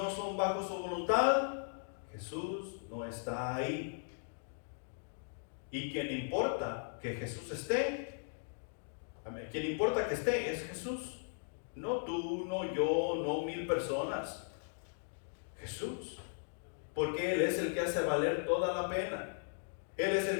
son bajo su voluntad, Jesús no está ahí. Y quien importa que Jesús esté, quien importa que esté es Jesús. No tú, no yo, no 1000 personas. Jesús. Porque Él es el que hace valer toda la pena. Él es el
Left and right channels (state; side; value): silent; right; digital silence